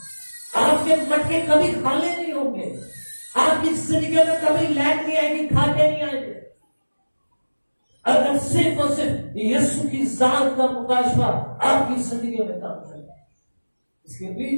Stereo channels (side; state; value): both; inverted; correlation -1.00